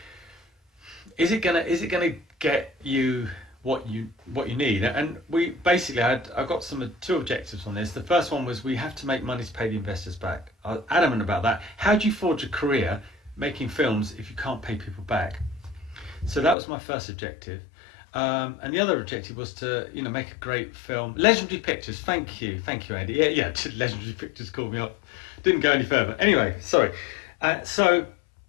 is it gonna get you what you need? And we basically I've got two objectives on this. The first one was we have to make money to pay the investors back. I was adamant about that. How do you forge a career making films if you can't pay people back? So that was my first objective. And the other objective was to, you know, make a great film. Legendary Pictures, thank you, Andy. Yeah, Legendary Pictures called me up. Didn't go any further. Anyway, sorry. So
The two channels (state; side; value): drops out; right; at 16.6 s